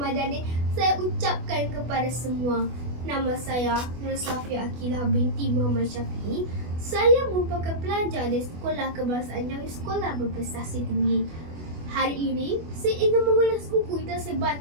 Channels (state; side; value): late; left; 24 ms